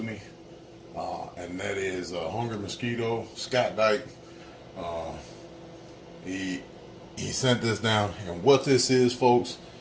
and that is Hungry Mosquito, Scott Dyke. He sent this down, and what this is, folks,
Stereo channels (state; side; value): identical; both; correlation 1.00